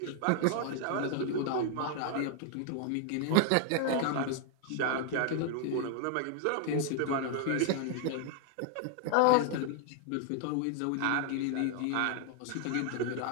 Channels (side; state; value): both; different; correlation 0.00